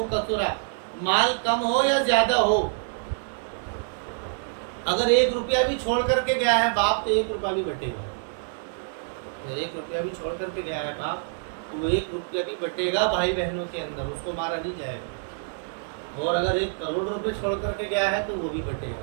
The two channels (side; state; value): left; silent; digital silence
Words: کثر، مال کم ہو یا زیادہ ہو، اگر 1 روپیہ بھی چھوڑ کر کے گیا ہے باپ تو 1 روپیہ بھی بٹے گا، اگر 1 روپیہ بھی چھوڑ کر کے گیا ہے باپ تو وہ 1 روپیہ بھی بٹے گا بھائی بہنوں کے اندر، اس کو مارا نہیں جائے گا، اور اگر 1 کروڑ روپے چھوڑ کر کے گیا ہے تو وہ بھی بٹے گا۔